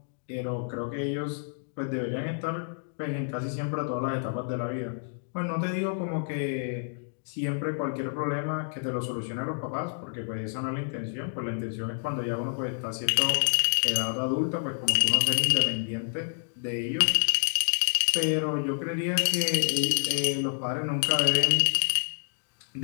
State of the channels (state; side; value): silent; right; digital silence